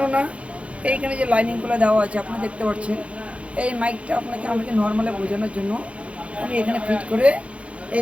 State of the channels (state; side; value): late; left; 0.062 ms